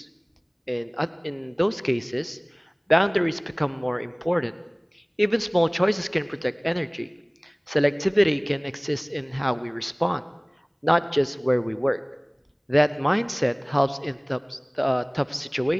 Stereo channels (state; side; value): identical; both; correlation 1.00